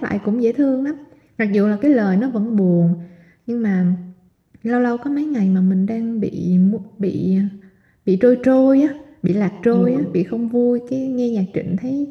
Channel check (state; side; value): identical; both; correlation 1.00